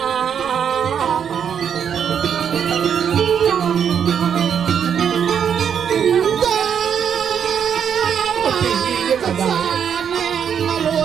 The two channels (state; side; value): quieter; left; 8.0 dB